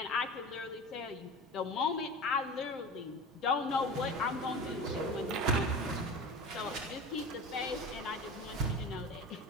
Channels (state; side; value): normal; both; correlation 0.32